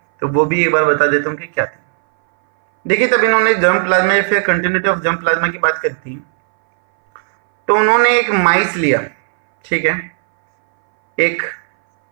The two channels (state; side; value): silent; left; 62 dB below the other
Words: वो भी एक बार बता देता हूँ कि क्या थी। देखिए, तब इन्होंने जर्म प्लाज्मा या फिर कंटिन्यूटी ऑफ जर्म प्लाज्मा की बात करी थी, तो उन्होंने एक माइस लिया, ठीक है, एक